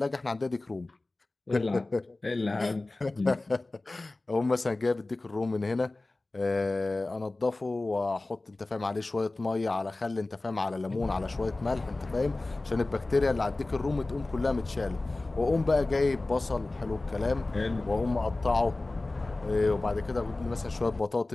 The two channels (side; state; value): right; quieter; 3.0 dB